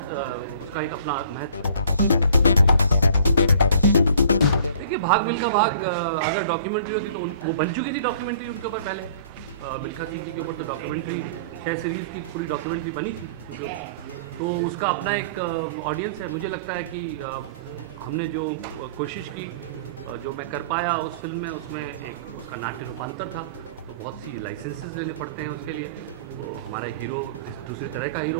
उसका एक अपना महत्व। देखिए भाग मिल्खा भाग अगर डॉक्यूमेंट्री होती तो वो बन चुकी थी डॉक्यूमेंट्री उनके ऊपर पहले। मिल्खा सिंह जी के ऊपर तो डॉक्यूमेंट्री 6 सीरीज़ की पूरी डॉक्यूमेंट्री बनी थी उनके ऊपर। तो उसका अपना एक ऑडियंस है। मुझे लगता है कि हमने जो कोशिश की, जो मैं कर पाया उस फिल्म में, उसमें एक उसका नाट्य रूपांतर था। तो बहुत सी लाइसेंसेस लेने पड़ते हैं उसके लिए। तो हमारा हीरो दूसरे तरह का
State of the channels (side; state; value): both; inverted; correlation -0.50